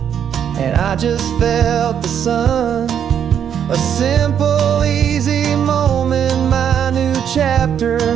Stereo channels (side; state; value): left; quieter; 8.7 dB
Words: and I just felt the sun. A simple, easy moment, my new chapter